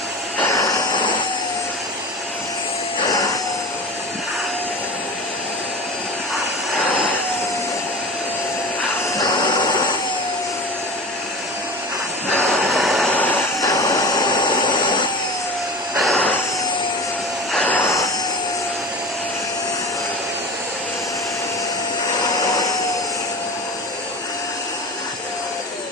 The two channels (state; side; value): normal; both; correlation 0.33